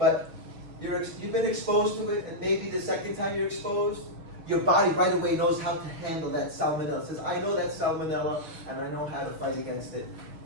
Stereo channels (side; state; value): left; late; 6.4 ms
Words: you've been exposed to it, and maybe the second time you're exposed, your body right away knows how to handle that salmonella. It says, I know that salmonella, and I know how to fight against it